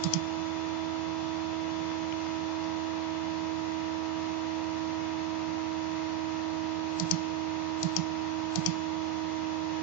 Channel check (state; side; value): quieter; left; 9.4 dB